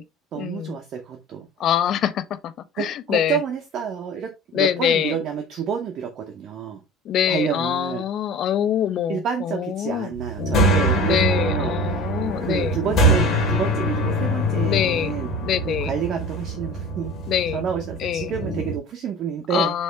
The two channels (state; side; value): normal; both; correlation 0.38